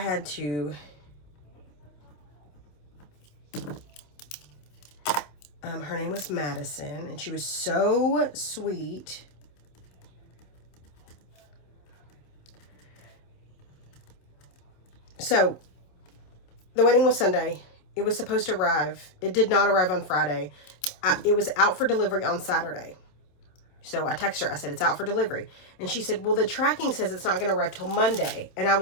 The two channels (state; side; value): late; right; 27 ms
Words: to her name was Madison, and she was so sweet. So the wedding was Sunday. It was supposed to arrive. It did not arrive on Friday. It was out for delivery on Saturday. So I texted her. I said, it's out for delivery. And she said, well, the tracking says it's not going to arrive till Monday. And I